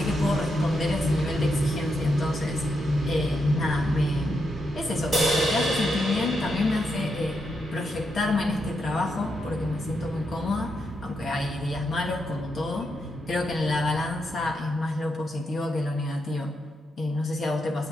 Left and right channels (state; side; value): normal; both; correlation 0.83